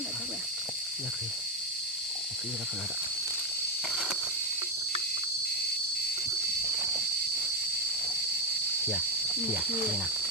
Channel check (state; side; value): normal; both; correlation 0.09